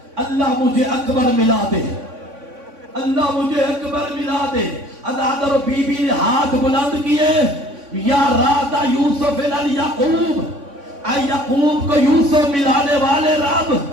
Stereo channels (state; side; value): late; left; 3.5 ms